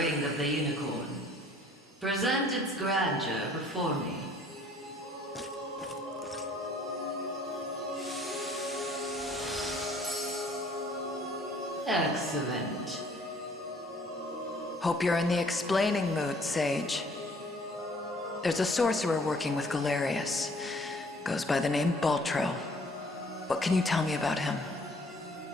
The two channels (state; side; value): normal; both; correlation 0.57